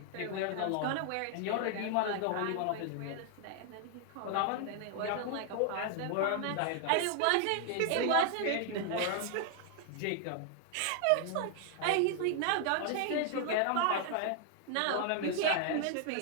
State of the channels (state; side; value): different; both; correlation 0.00